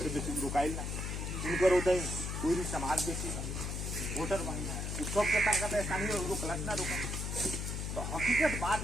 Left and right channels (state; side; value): noise; left; hum, 3 dB below the sound